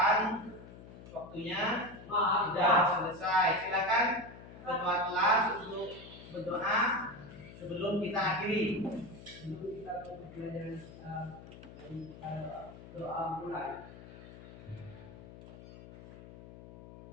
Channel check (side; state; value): left; noise; hum, 16 dB below the sound